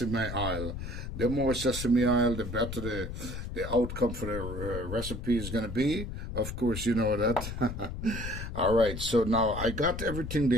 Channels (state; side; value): noise; left; rumble, 6 dB below the sound